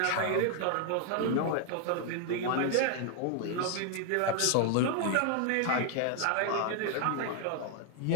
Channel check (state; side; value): different; both; correlation 0.00